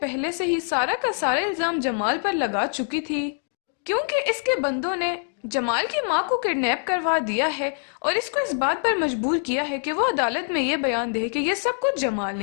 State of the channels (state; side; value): silent; right; digital silence